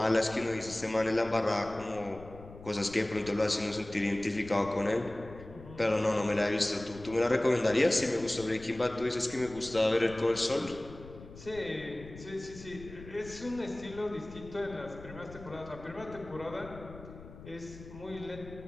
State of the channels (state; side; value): noise; left; rumble, 16 dB below the sound